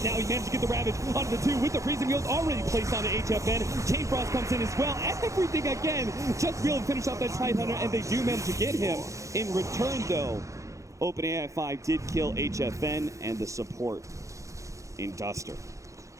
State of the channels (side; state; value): left; late; 0.15 ms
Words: Now he managed to get the Ravage onto the 2 with the Freezing Field already placed onto HFN. Chain Frost comes in as well. Everything again, just to be able to finish off that Tide Hunter, and they do manage to get him. In return, though, OpenAI 5 did kill HFN and the support in Duster.